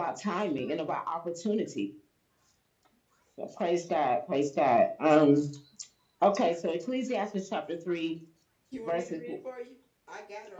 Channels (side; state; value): both; identical; correlation 1.00